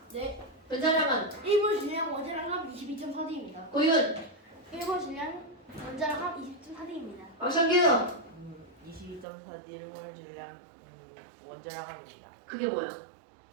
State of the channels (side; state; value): left; drops out; at 9.2 s